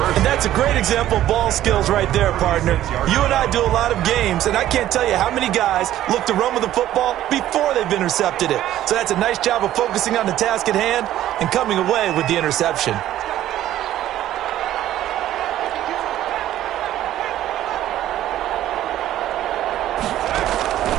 And that's a great example of ball skills right there, partner. You and I do a lot of games, and I can't tell you how many guys look to run with the football before they've intercepted it. So that's a nice job of focusing on the task at hand and coming away with the interception.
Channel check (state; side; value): quieter; left; 13.0 dB